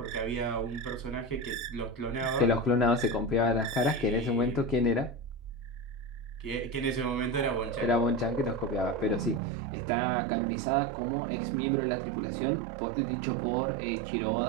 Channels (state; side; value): drops out; left; at 9.4 s